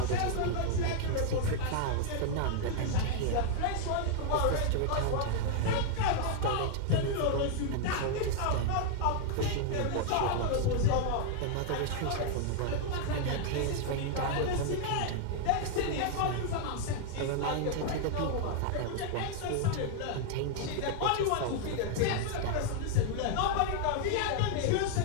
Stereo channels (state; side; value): different; both; correlation 0.00